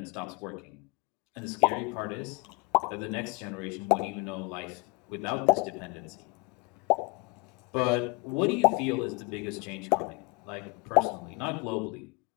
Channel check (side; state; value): right; quieter; 26.1 dB